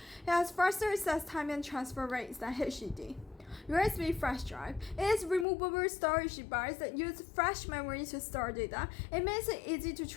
has faster access time and transfer rates than HDD. USB flash drive. It is a removable storage device that uses flash memory to store data. It makes it easy to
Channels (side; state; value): right; drops out; at 5.5 s